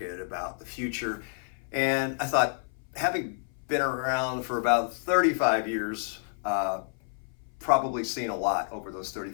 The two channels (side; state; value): right; silent; 58 dB below the other